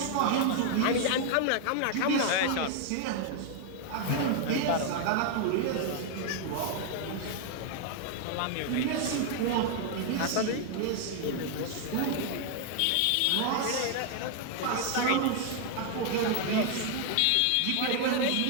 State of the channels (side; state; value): both; different; correlation 0.00